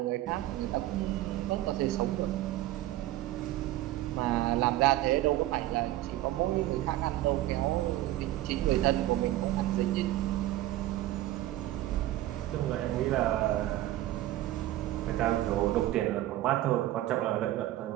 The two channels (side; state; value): left; quieter; 15.2 dB